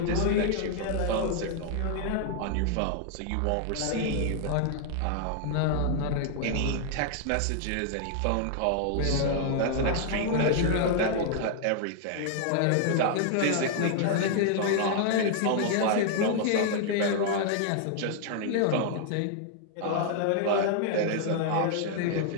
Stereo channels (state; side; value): different; both; correlation 0.00